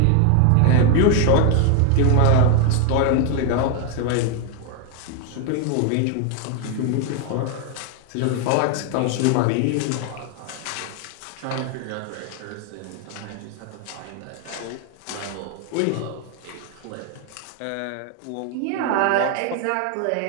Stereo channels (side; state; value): both; different; correlation 0.00